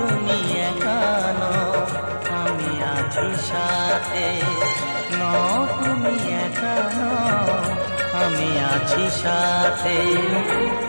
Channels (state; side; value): inverted; both; correlation -1.00